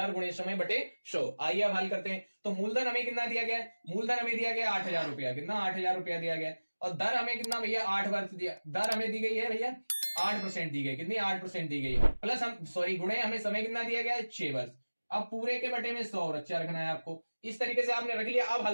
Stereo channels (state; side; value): inverted; both; correlation -1.00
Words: गुणे समय बटे 100। आइए अब हल करते हैं। तो मूलधन हमें कितना दिया गया? मूलधन हमें दिया गया 8,000 रुपया। कितना? 8,000 रुपया दिया गया। और दर हमें कितना भैया? 8 वर्ष दिया। दर हमें दी गई है भैया 8% दी गई। कितनी? 8% दी गई है। प्लस हम गुणे हमें समय कितना दिया गया है? 6 वर्ष। अब पूरे के बटे में 100 अच्छा रखना है आपको। इस तरीके से आपने रख लिया। अब